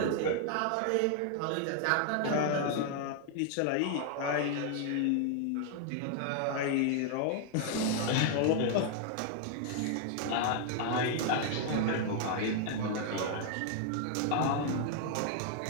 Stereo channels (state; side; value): different; both; correlation 0.00